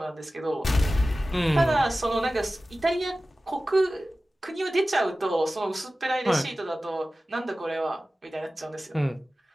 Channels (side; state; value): both; normal; correlation 0.96